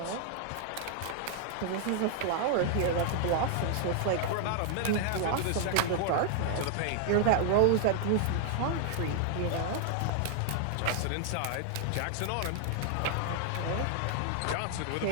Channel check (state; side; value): different; both; correlation 0.00